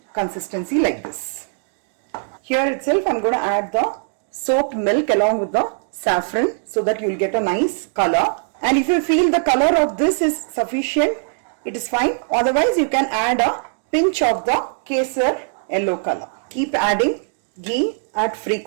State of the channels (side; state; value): left; silent; digital silence